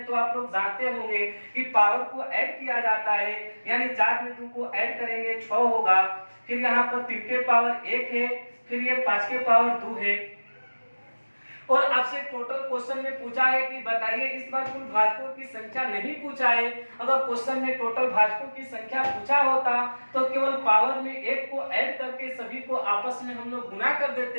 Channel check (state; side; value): inverted; both; correlation -1.00